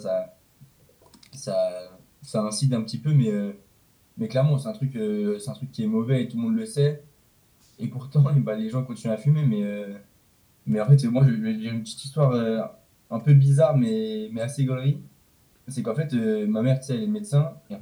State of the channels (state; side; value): identical; both; correlation 1.00